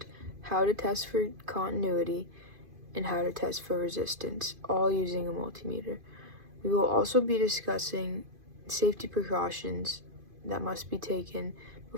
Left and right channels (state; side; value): late; left; 2.5 ms